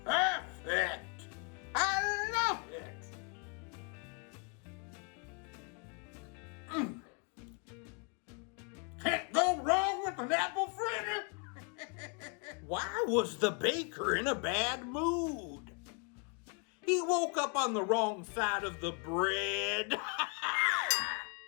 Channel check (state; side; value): quieter; right; 34.9 dB